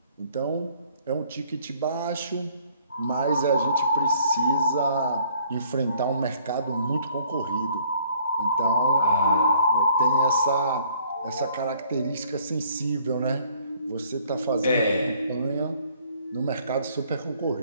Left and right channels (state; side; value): inverted; both; correlation -0.60